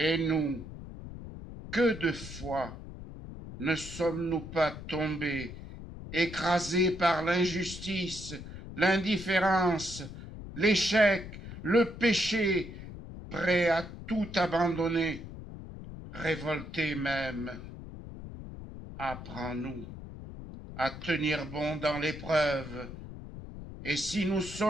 nous, que de fois ne sommes-nous pas tombés, écrasés par l'injustice, l'indifférence, l'échec, le péché, prêts à tout abandonner, révoltés même. Apprends-nous à tenir bon dans l'épreuve, et si nous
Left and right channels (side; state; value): left; noise; rumble, 12 dB below the sound